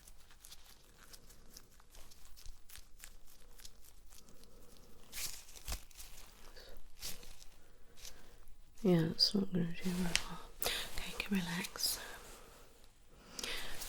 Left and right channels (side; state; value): both; identical; correlation 1.00